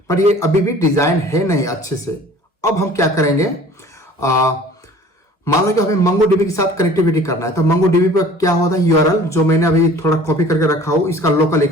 पर ये अभी भी डिजाइन है नहीं अच्छे से। अब हम क्या करेंगे, मान लो कि हमें MongoDB के साथ कनेक्टिविटी करना है तो MongoDB पर क्या होता है, URL जो मैंने अभी थोड़ा कॉपी करके रखा हूं, इसका लोकल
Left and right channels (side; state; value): both; normal; correlation 0.48